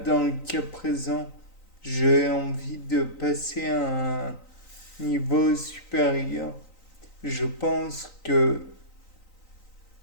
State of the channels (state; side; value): late; right; 3.9 ms